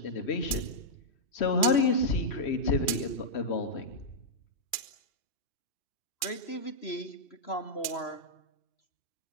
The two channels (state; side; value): late; right; 2.4 ms